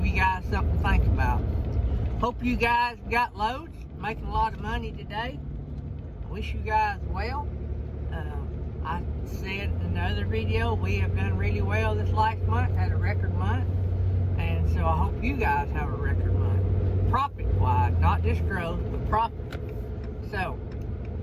you guys something to think about. Hope you guys got loads, making a lot of money today. I wish you guys well. I said in another video, we have done really well this last month, had a record month. And so I hope you guys have a record month. Profit-wise, not just growth, but profit. So,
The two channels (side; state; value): both; identical; correlation 1.00